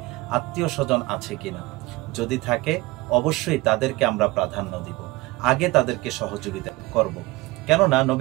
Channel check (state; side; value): quieter; left; 21.3 dB